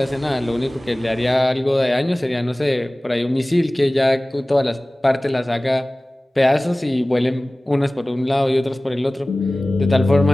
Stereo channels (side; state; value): both; normal; correlation 0.98